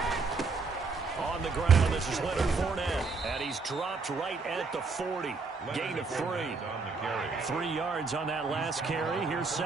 On the ground, this is Leonard Fournette, and he's dropped right at the 40. Gain of 3. 3 yards on that last carry. Here's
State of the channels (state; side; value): quieter; left; 4.3 dB